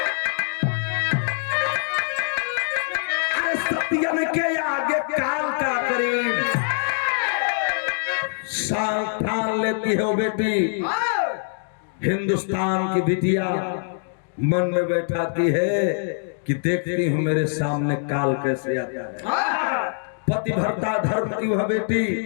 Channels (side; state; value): right; silent; digital silence